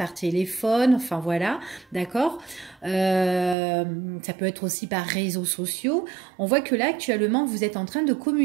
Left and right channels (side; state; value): left; drops out; at 3.6 s